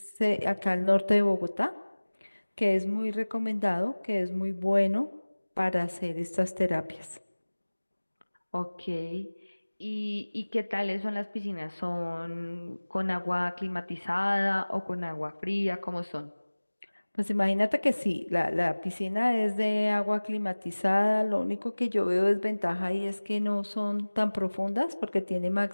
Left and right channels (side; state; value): both; inverted; correlation -1.00